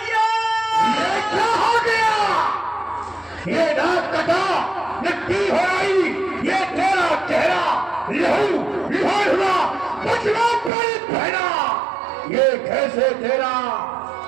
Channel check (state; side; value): drops out; left; at 10.7 s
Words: ये क्या हो गया? ये नाक कटा, मिट्टी हो आई, ये तेरा चेहरा लहू लिहार हुआ, बचना पड़ी बहना। ये कैसे तेरा